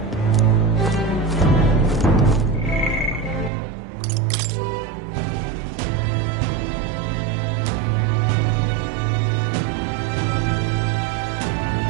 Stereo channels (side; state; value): left; drops out; at 3.5 s